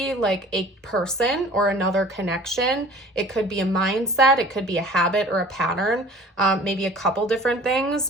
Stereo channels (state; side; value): normal; both; correlation 0.47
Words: like a person or another connection. It could be a mindset. It could be a habit or a pattern, maybe a couple different things.